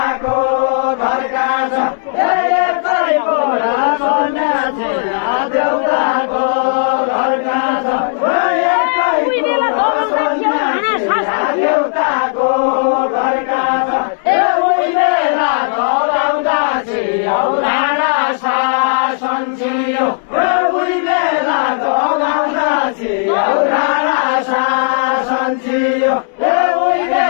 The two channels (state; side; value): silent; right; digital silence